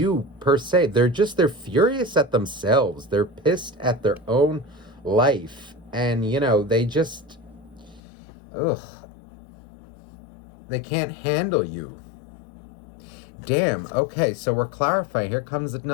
per se. They're furious at themselves. They're pissed at their own life. And, they just, they can't handle you. Damn. Okay, so we're clarifying. Here comes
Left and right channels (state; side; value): drops out; right; at 8.0 s